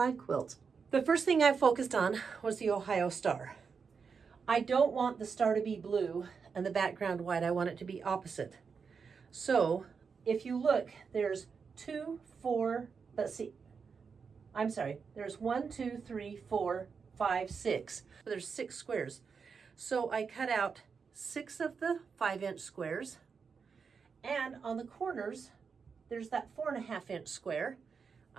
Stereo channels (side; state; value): left; quieter; 5.7 dB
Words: quilt. The first thing I focused on was the Ohio star. I don't want the star to be blue and the background white. I want it to be opposite. So if you look, there's there's 1, 2, 3, 4, 5, 6. There's 6 squares. So I cut out 6 of the 5-inch squares. And on the corners, there's that 4.5-inch square.